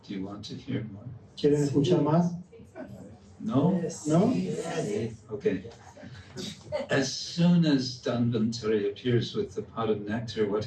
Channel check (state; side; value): identical; both; correlation 1.00